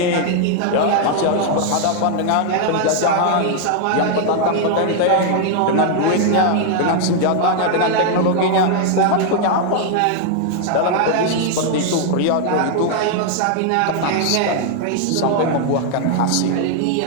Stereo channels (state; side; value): different; both; correlation 0.00